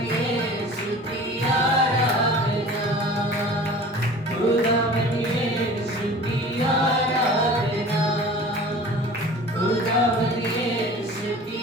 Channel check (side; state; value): both; normal; correlation 0.42